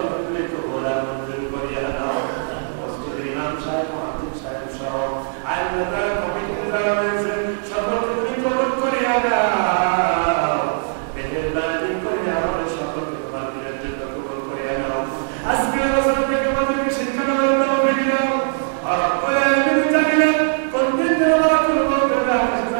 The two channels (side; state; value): left; silent; digital silence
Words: তুমি কবুল আর মঞ্জুর করিয়া দাও মসজিদের ইমাম সাহেব মুহাদ্দিস সাহেব সহ আল্লাহ তাআলা কমিটিতে যারা রয়েছে সকলকে তুমি কবুল করিয়া দাও মেহেরবানি করে আমাদের সকলকে তোমার দিনের জন্য কবুল করিয়া দাও আজকের বছর থেকে আমাদেরকে শিক্ষা দেওয়ার তৌফিক দাও রব্বুল আলামিন জানিনা কোনদিন দোয়া করব তোমরা কাছে